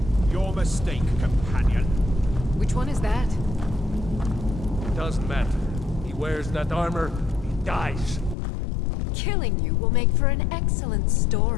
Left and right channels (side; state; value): right; drops out; at 8.3 s